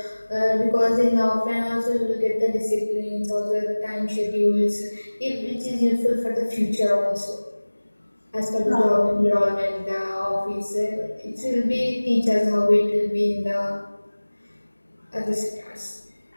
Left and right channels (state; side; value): inverted; both; correlation -1.00